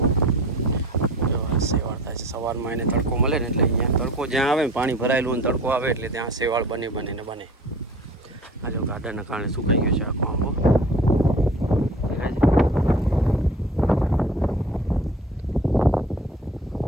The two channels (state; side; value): normal; both; correlation 0.43